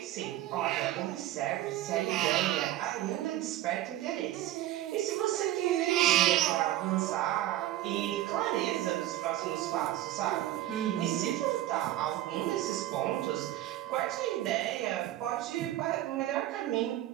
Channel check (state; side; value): quieter; left; 14.1 dB